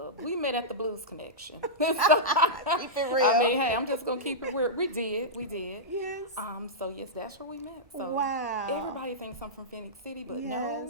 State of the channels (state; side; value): normal; both; correlation -0.12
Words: We met at the Blues Connection. Keep it real. I mean, hey, I'm just gonna keep it real. We did. Yes. So yes, that's where we met. So Wow. everybody thinks I'm from Phoenix City, but Yes.